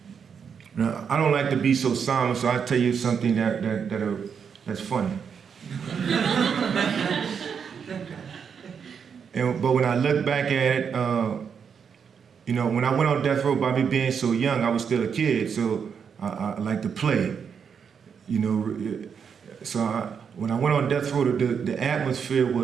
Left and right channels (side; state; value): left; quieter; 6.8 dB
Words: Now, I don't like to be so somber, so I'll tell you something that's funny. But when I look back at it, when I went on death row, by me being so young, I was still a kid, so I like to play. So when I went on death row, the atmosphere